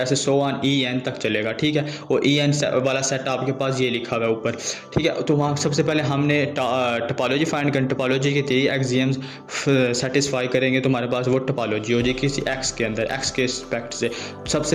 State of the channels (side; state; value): both; identical; correlation 1.00